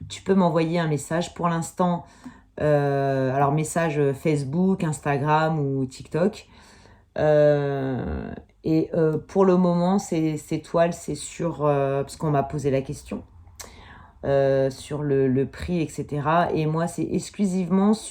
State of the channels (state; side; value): identical; both; correlation 1.00